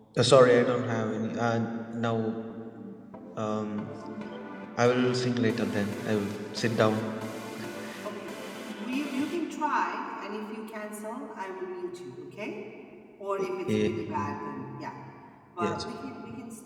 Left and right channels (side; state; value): both; identical; correlation 1.00